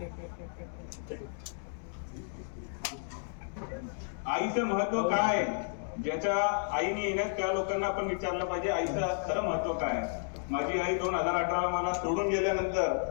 आईचं महत्व काय आहे, ज्याच्या आईने येण्यात त्या लोकांना आपण विचारलं पाहिजे आईचं खरं महत्व काय आहे. माझी आई 2018 मला सोडून गेल्यानंतर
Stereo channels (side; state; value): right; silent; digital silence